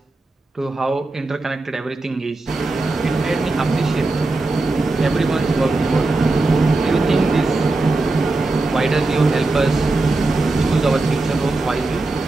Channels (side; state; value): left; quieter; 3.2 dB